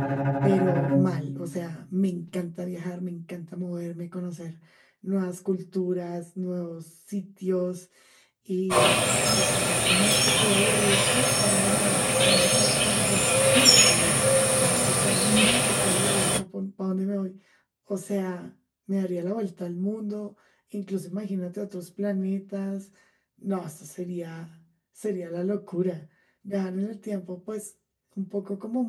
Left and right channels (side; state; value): both; identical; correlation 1.00